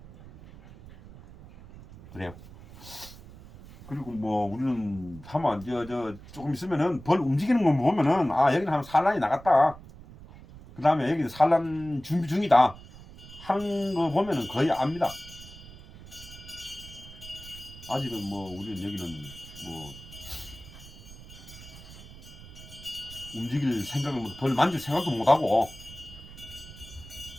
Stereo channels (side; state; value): right; noise; rumble, 17 dB below the sound